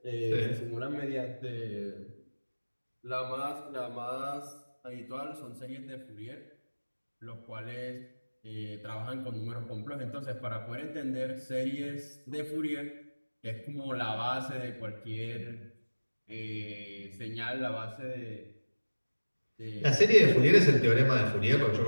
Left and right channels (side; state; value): both; inverted; correlation -1.00